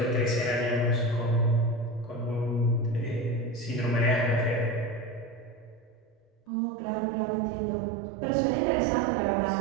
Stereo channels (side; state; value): left; drops out; at 6.3 s